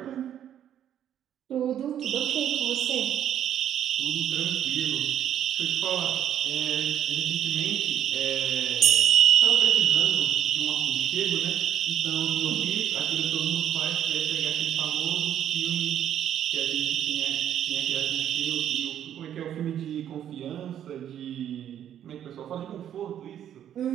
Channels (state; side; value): quieter; left; 10.2 dB